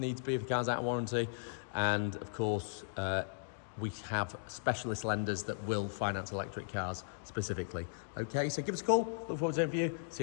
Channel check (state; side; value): silent; right; digital silence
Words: if the car's out of warranty, and of course we have specialist lenders that will finance electric cars specifically. Okay, so give us a call. Look forward to hearing from you. See